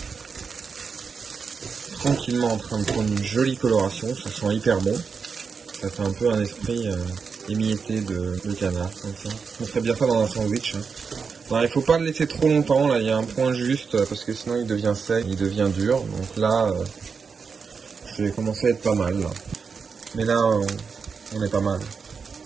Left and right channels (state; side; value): quieter; left; 5.5 dB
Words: tranquillement en train de prendre une jolie coloration, ça sent hyper bon. Ça fait un peu un esprit émietté de canard, comme ça. On ferait bien ça dans un sandwich. Hein. Alors, il faut pas le laisser trop longtemps, là il y a un point juste, parce que sinon il devient sec, il devient dur. Donc là, je vais commencer à être pas mal. Là. Mais là, on est pas mal.